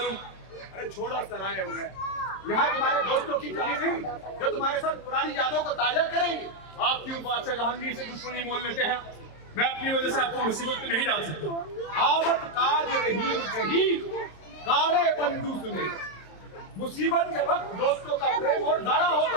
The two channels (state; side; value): late; right; 27 ms